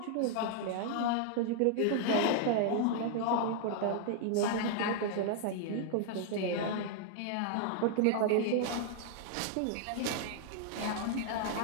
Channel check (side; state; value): both; different; correlation 0.00